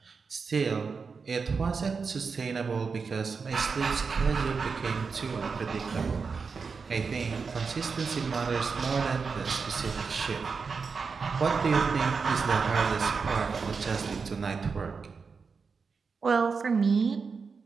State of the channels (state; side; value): quieter; left; 5.1 dB